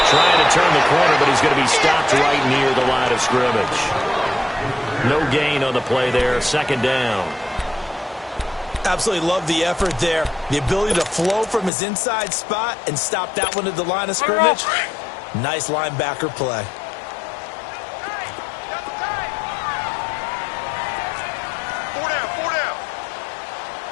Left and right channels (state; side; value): drops out; right; at 11.7 s